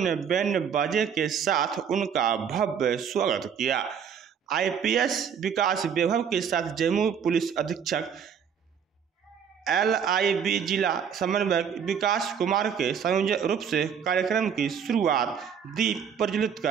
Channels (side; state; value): left; quieter; 7.5 dB